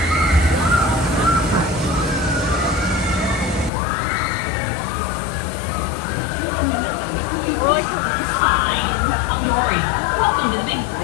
Welcome to the big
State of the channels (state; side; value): drops out; right; at 3.7 s